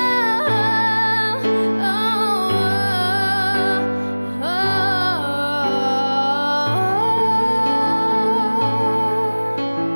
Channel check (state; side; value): inverted; both; correlation -1.00